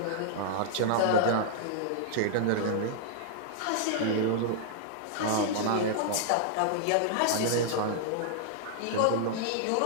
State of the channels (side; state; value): both; different; correlation -0.01